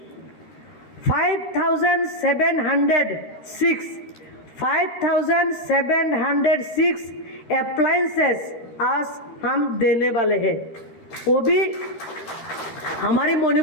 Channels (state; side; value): late; right; 13 ms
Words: 5,706 अप्लायंसेस आज हम देने वाले हैं। वो भी हमारी